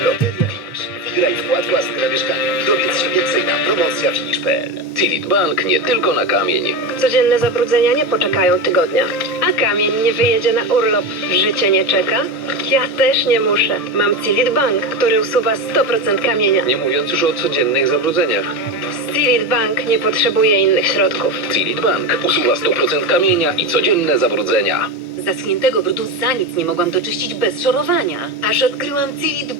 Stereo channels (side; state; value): both; normal; correlation 0.18